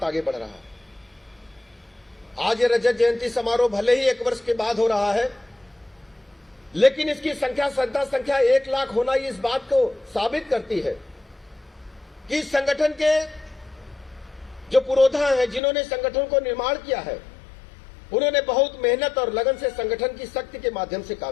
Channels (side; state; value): right; drops out; at 15.6 s